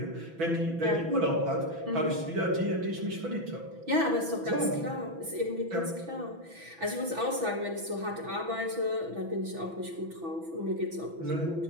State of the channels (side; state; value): left; late; 6.0 ms